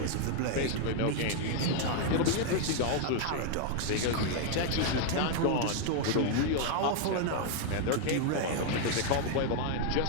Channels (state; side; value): different; both; correlation 0.00